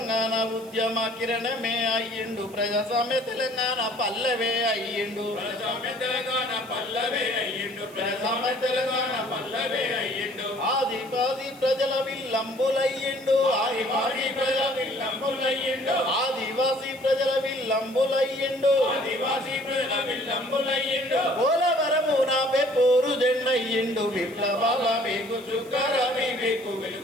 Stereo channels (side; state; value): right; noise; hiss, 23 dB below the sound